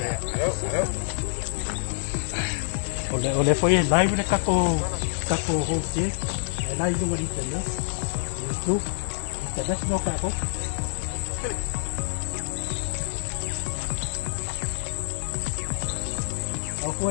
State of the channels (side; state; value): right; silent; digital silence